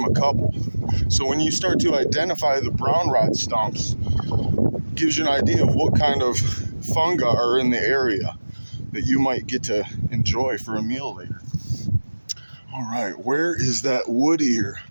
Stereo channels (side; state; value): both; inverted; correlation -1.00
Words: a couple. So when you start to identify the brown rot stumps, it gives you an idea of what kind of fungi are in the area that you might get to enjoy for a meal later. All right, where is that wood ear?